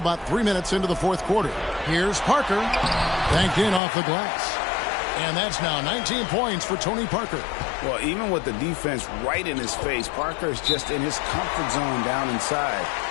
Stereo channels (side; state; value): right; drops out; at 3.8 s